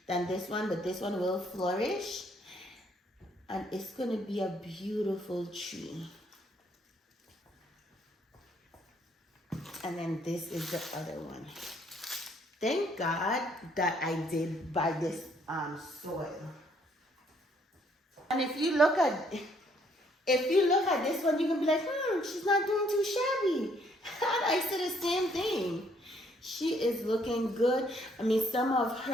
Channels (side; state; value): both; normal; correlation 0.67